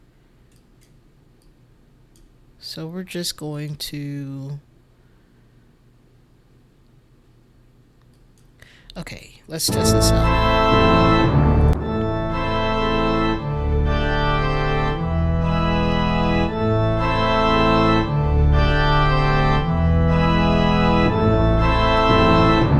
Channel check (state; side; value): identical; both; correlation 1.00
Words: So we're just going to. Okay, let's test this out.